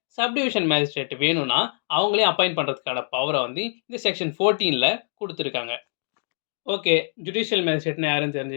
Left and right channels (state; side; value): silent; right; 62 dB below the other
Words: சப்டிவிஷன் மேஜிஸ்ட்ரேட் வேணும்னா அவங்களே அப்பாயிண்ட் பண்ணுறதுக்கான பவரை வந்து இந்த செக்ஷன் 14ல கொடுத்துருக்காங்க. ஓகே, ஜுடிஷியல் மேஜிஸ்ட்ரேட்னா யாரும்